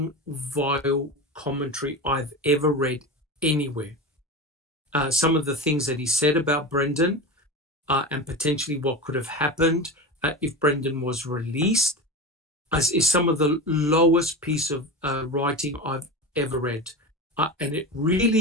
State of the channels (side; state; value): both; normal; correlation 0.25